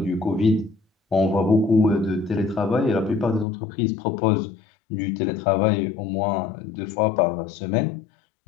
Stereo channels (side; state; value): right; drops out; at 3.5 s